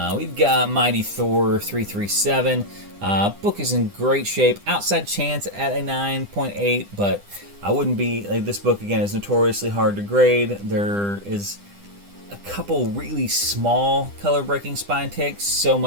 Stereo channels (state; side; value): late; left; 9.9 ms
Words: We've got Mighty Thor 337. Book is in great shape. Outside chance at a 9.8, but I wouldn't be this book again is notoriously hard to grade. There is a couple really small color breaking spine ticks, so